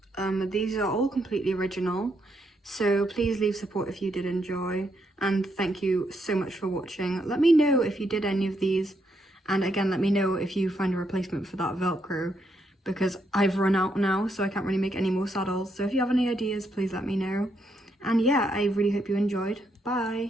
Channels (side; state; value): both; normal; correlation 0.77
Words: These are all completely original, so please leave support if you did enjoy, and thank you so much for watching. Let me know if you did any of these, and again, let me know if you find a replacement for that Velcro, because I've run out now, so I can't really make any more saddles. So if you have any ideas, please let me know. And yeah, I really hope you enjoyed.